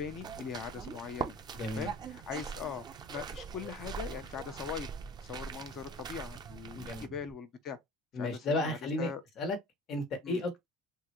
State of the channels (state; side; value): normal; both; correlation 0.44